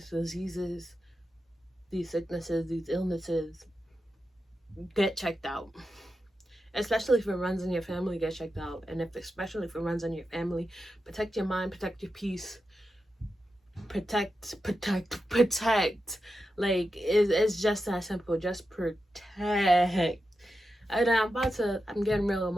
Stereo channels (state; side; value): normal; both; correlation 0.89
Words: diseases, these sicknesses, these illnesses. Get checked out. Especially if it runs in your family, get checked out. And especially if it runs in your family, protect your mind, protect your peace. Protect. Like, it's just that simple. Just protect. And I'm getting real